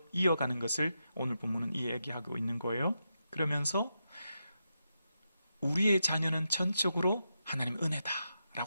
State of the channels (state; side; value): inverted; both; correlation -0.86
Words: 이어가는 것을 오늘 본문은 이야기하고 있는 거예요. 그러면서 우리의 자녀는 전적으로 하나님